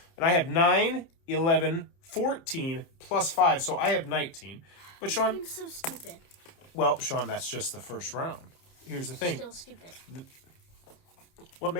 And I have 9, 11, 14, plus 5, so I have 19. But Sean... I'm so stupid. Well, Sean, that's just the first round. Here's the thing. Still stupid. What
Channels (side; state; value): right; late; 30 ms